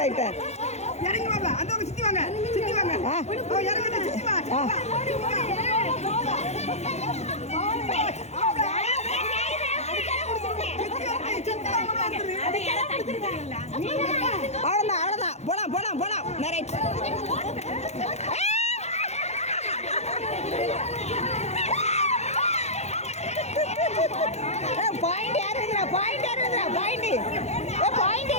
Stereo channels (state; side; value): late; right; 0.32 ms